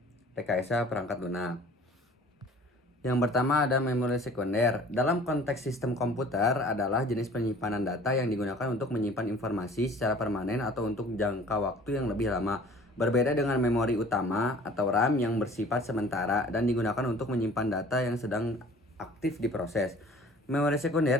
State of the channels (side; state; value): both; normal; correlation 0.49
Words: Rekayasa Perangkat Lunak. Yang pertama ada memori sekunder. Dalam konteks sistem komputer adalah jenis penyimpanan data yang digunakan untuk menyimpan informasi secara permanen atau untuk jangka waktu yang lebih lama. Berbeda dengan memori utama atau RAM yang bersifat sementara dan digunakan untuk menyimpan data yang sedang aktif diproses. Memori sekunder